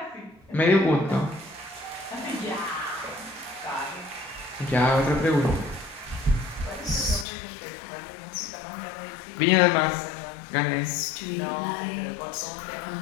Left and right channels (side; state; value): right; drops out; at 7.2 s